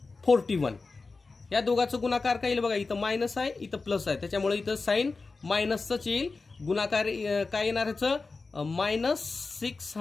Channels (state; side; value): quieter; right; 4.0 dB